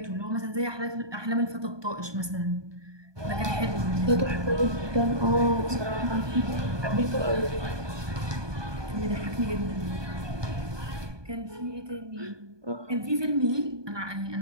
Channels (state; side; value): late; left; 1.2 ms